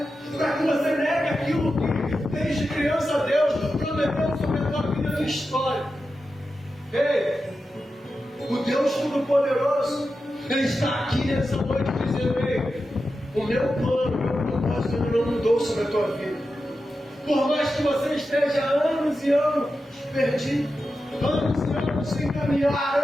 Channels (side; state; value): both; normal; correlation 0.90